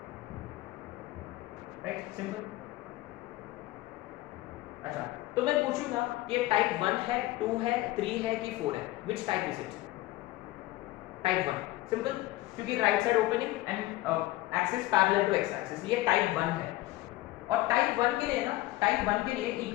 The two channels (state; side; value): quieter; right; 17.7 dB